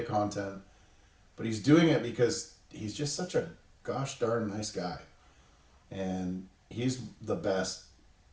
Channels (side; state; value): both; identical; correlation 1.00